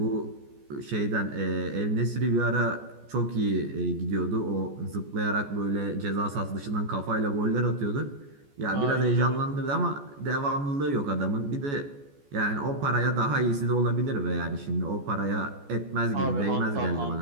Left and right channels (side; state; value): left; late; 14 ms